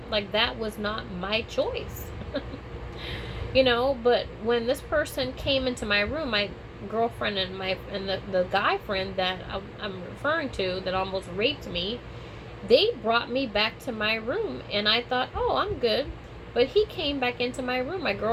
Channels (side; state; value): both; identical; correlation 1.00